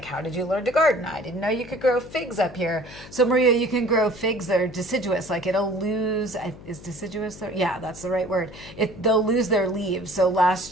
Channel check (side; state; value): left; noise; hum, 17 dB below the sound